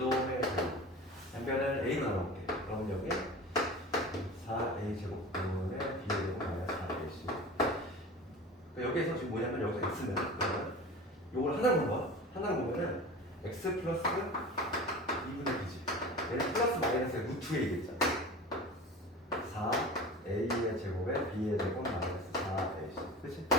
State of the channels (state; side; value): normal; both; correlation 0.35